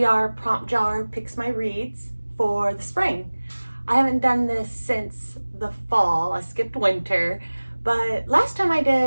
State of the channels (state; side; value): inverted; both; correlation -1.00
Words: prompt jar picks my reads for the spring. I haven't done this since the fall. I skipped winter, but last time I